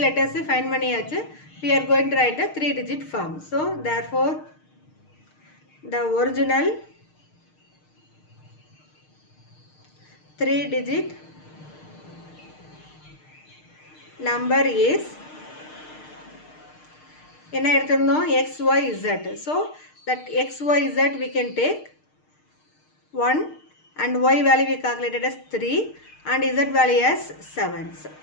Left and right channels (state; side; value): late; right; 6.5 ms